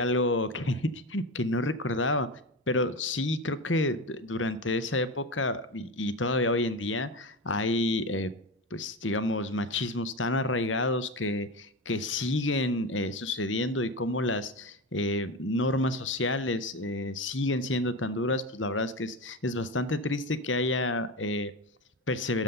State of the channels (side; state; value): both; normal; correlation 0.22